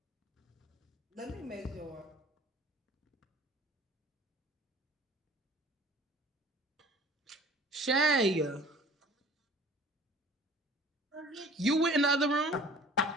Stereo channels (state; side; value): normal; both; correlation 0.48